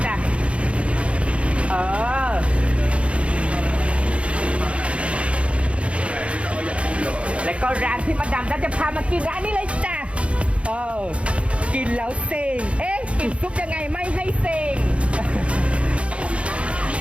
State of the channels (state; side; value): late; left; 0.061 ms